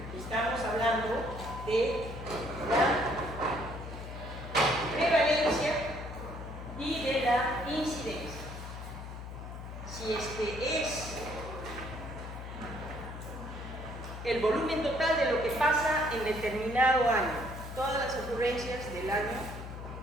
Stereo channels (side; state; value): left; noise; hum, 10 dB below the sound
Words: estamos hablando de la prevalencia y de la incidencia. Si este es el volumen total de lo que pasa en determinado año, todas las ocurrencias del año,